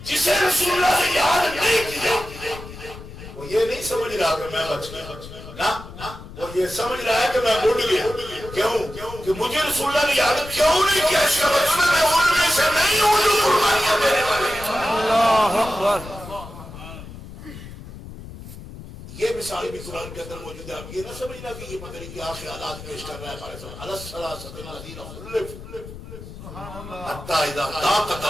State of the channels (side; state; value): left; noise; rumble, 14 dB below the sound